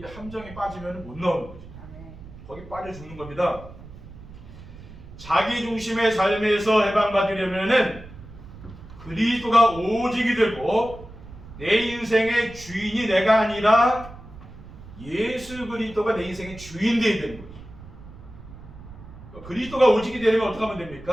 함정에 빠지면 못 나오는 거죠. 거기 빠져 죽는 겁니다. 자기 중심의 삶에서 해방받으려면은 그리스도가 오직이 되고 내 인생의 주인이 내가 아니라 예수 그리스도가 내 인생의 주인 되어야 되는 거죠. 그리스도가 오직이 되려면 어떻게 하면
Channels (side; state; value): right; noise; rumble, 17 dB below the sound